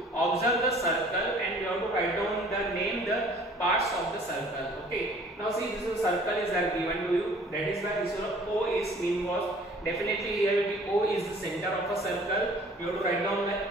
Observe the circle and you have to write down the name the parts of the circle. Okay. Now see, this is circle is given to you. That is why this is O is mean was definitely here will be O is the center of a circle. You have to write down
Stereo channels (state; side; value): normal; both; correlation 0.53